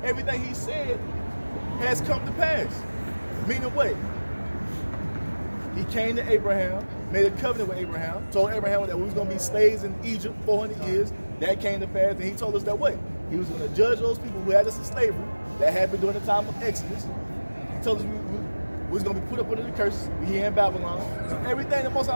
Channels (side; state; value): both; inverted; correlation -1.00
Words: everything he said has come to pass. Meaning what? He came to Abraham, made a covenant with Abraham, told Abraham that we was going to be slaves in Egypt 400 years. That came to pass, and he told us that what? He was going to judge those people who had us in slavery. That happened during the time of Exodus. He told us we was going to be put up under the curse. We here in Babylon. So everything the Most